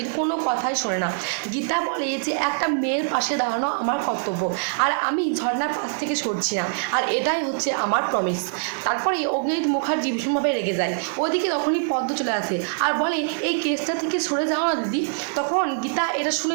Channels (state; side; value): silent; left; digital silence